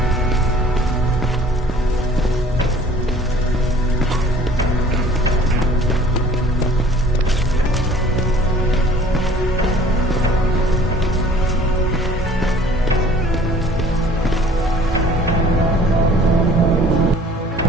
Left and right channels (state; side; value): normal; both; correlation 0.52